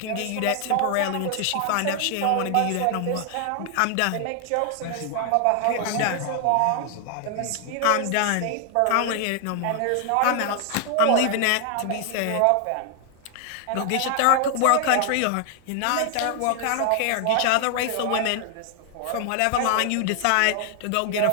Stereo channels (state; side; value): different; both; correlation 0.00